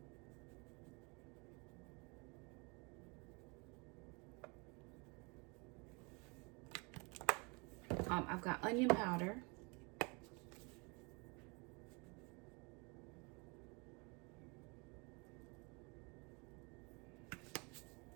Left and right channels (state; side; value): quieter; left; 30.4 dB